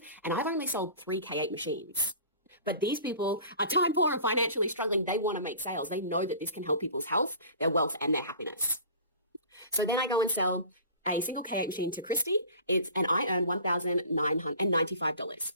and I've only sold 3 K8 machines. But these people are time poor and financially struggling. They want to make sales. They know that this can help people's health, their wealth, and their happiness. So then I go and sell a single K8 machine to Christy, and I earn $1,995.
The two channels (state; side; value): inverted; both; correlation -0.42